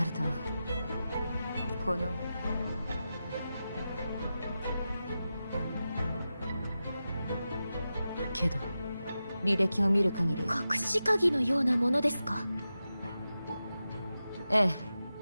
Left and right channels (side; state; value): both; inverted; correlation -0.92